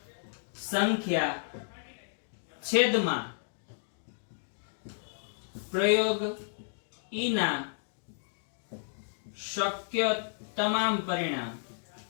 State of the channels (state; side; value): silent; right; digital silence